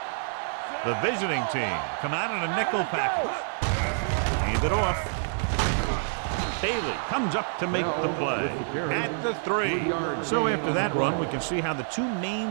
The visiting team come out in a nickel package. Hand it off. Bailey comes up to make the play at the 3. So after that run, we can see how the 2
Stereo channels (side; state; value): left; silent; 60 dB below the other